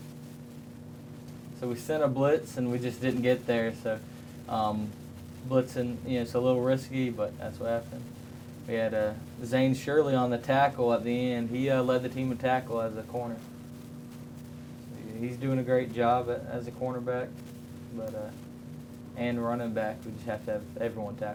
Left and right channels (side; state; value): both; identical; correlation 1.00